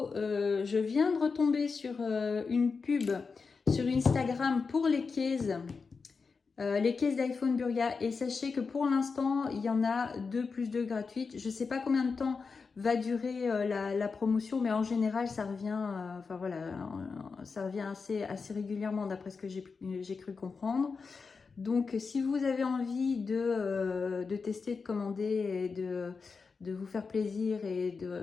je viens de retomber sur une pub sur Instagram pour les cases les cases d'iPhone Burga. Et sachez que pour l'instant, il y en a 2 plus 2 gratuites. Je ne sais pas combien de temps va durer la promotion, mais en général, ça revient, enfin voilà, ça revient assez régulièrement d'après ce que j'ai cru comprendre. Donc, si vous avez envie de tester, de commander et de vous faire plaisir et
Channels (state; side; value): quieter; right; 4.9 dB